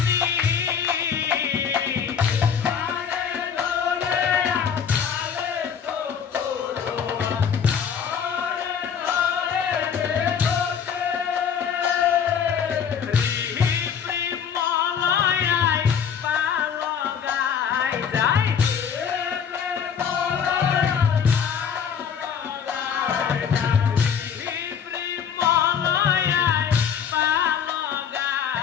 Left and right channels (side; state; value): right; quieter; 7.5 dB